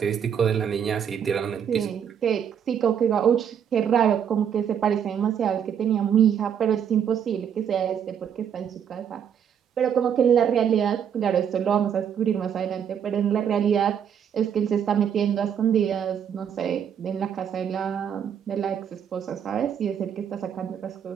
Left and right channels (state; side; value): quieter; left; 8.4 dB